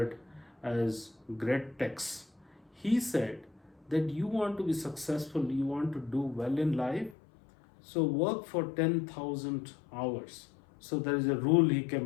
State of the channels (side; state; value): right; drops out; at 7.2 s